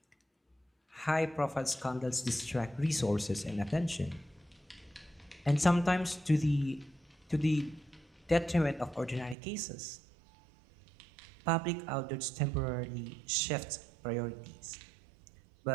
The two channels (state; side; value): drops out; left; at 9.3 s